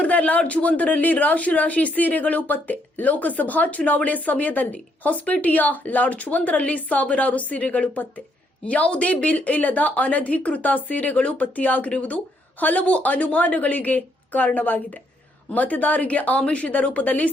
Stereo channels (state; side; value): normal; both; correlation 0.73